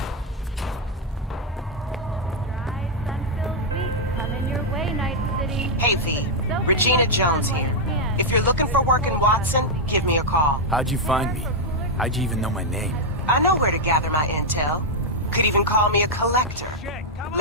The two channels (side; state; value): both; normal; correlation -0.03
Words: Hey V, Regina Jones here. If you're looking for work in Watson, give me a call. How'd you find me? How'd you even know my name? I know where to gather my intel. Could even call me a collector.